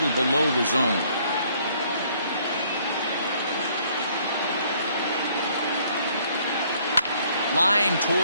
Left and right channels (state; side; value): inverted; both; correlation -0.63